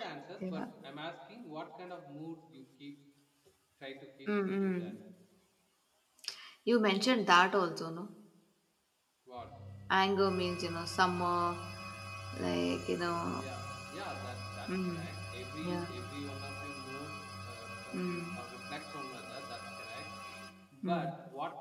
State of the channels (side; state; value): both; identical; correlation 1.00